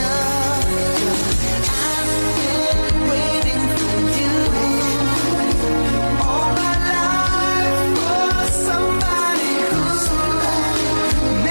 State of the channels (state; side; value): inverted; both; correlation -1.00